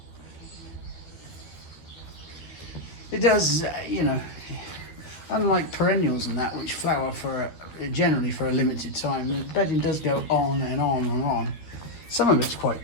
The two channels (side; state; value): right; late; 13 ms